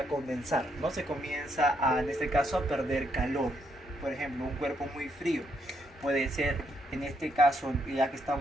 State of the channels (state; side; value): normal; both; correlation 0.75